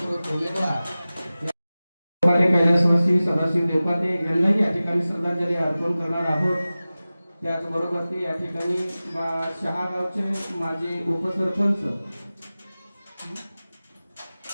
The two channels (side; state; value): both; inverted; correlation -0.97